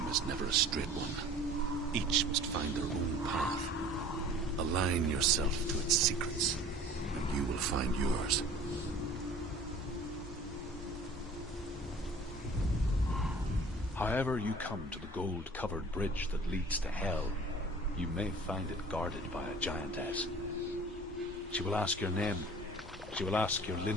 is never a straight one. Each must find their own path. Align yourself to its secrets, and you will find yours. However you come to the gold-covered bridge that leads to Hell, you may find it guarded by a giantess. She will ask your name. She will ask your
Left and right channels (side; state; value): both; normal; correlation 0.46